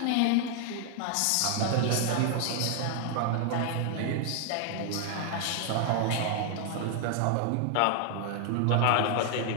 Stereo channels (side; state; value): both; different; correlation 0.00